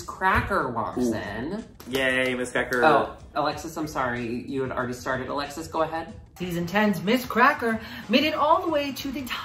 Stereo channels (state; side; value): identical; both; correlation 1.00